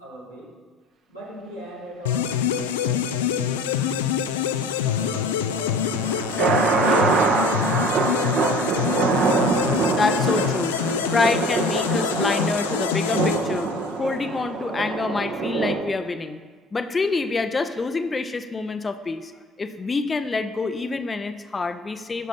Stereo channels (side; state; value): both; normal; correlation 0.44